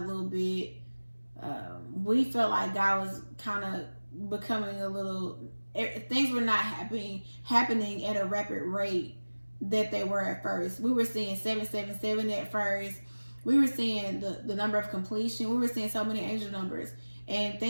a little bit. We felt like God was kind of becoming a little, things were not happening at a rapid rate that they were at first. We were seeing 777 at first. We were seeing the number of completion. We were seeing so many angel numbers. And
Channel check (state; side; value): inverted; both; correlation -1.00